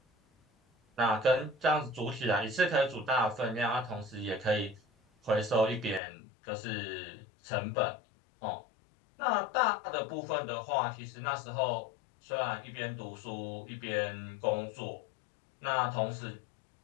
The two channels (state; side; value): drops out; right; at 6.0 s